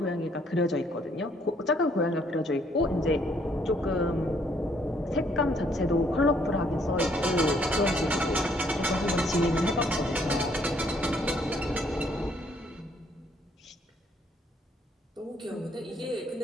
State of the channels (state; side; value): normal; both; correlation 0.67